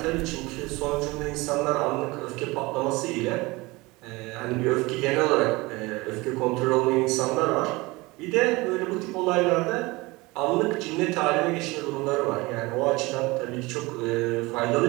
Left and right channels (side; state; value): left; quieter; 22.7 dB